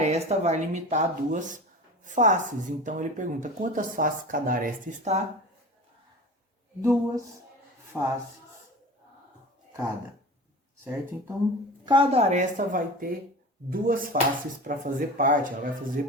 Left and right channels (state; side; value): normal; both; correlation 0.35